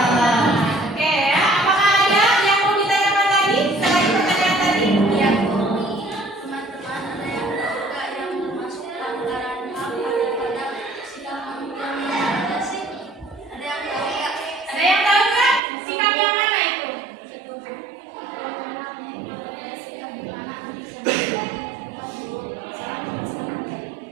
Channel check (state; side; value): drops out; left; at 15.6 s